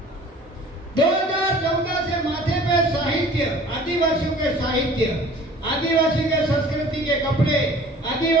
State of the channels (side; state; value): both; normal; correlation 0.47